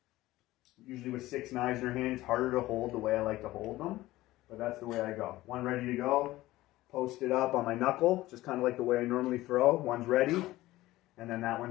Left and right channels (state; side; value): quieter; right; 17.2 dB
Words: Usually with 6 knives in your hand, it's harder to hold the way I like to hold them, but that's the way I go. One ready to go, post it up on my knuckle, just kind of like the way I normally throw. One's ready, and then that